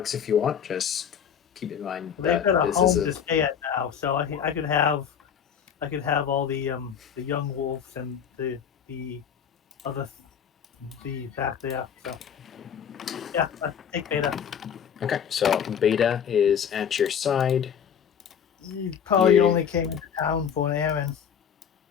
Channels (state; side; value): quieter; right; 8.0 dB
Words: if you want. Just keep in mind They've that got a this home is to stay at now, so I could have all the young wolves and the back there. So yeah, take Beta. Okay, so Beta is at your side. You probably Yeah. only came into town for an errand